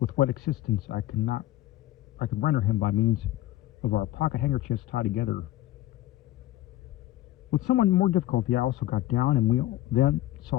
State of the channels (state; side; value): quieter; right; 14.9 dB